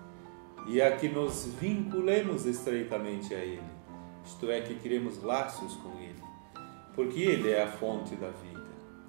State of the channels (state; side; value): silent; left; digital silence